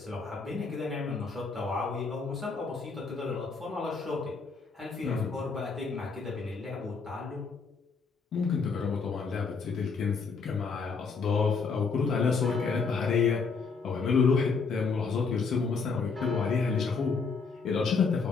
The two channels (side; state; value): right; quieter; 4.9 dB